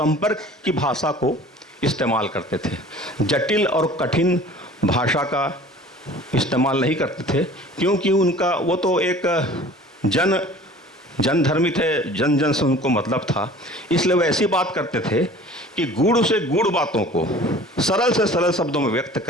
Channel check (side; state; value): both; normal; correlation 0.46